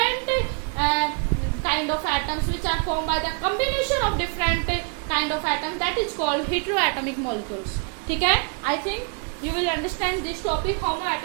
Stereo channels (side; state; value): left; quieter; 37.6 dB